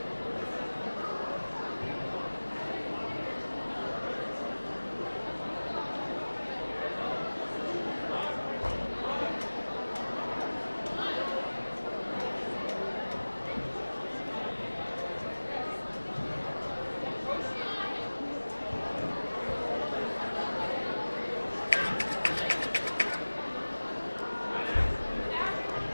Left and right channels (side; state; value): both; inverted; correlation -1.00